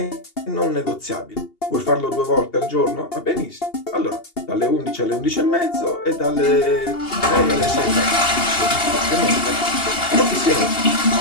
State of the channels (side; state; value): right; late; 2.8 ms